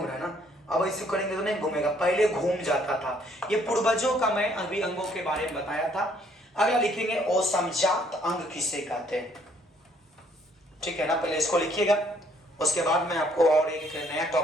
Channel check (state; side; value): normal; both; correlation 0.65